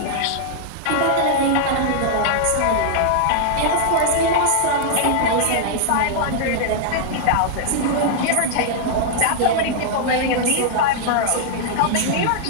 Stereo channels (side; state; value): both; different; correlation -0.01